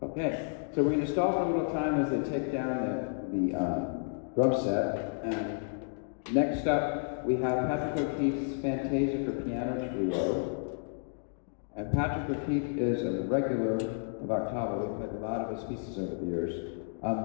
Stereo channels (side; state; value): right; silent; digital silence